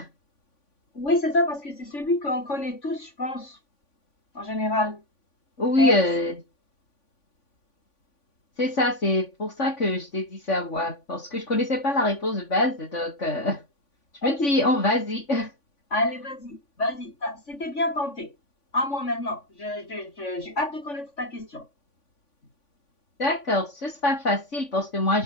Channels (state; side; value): late; right; 3.5 ms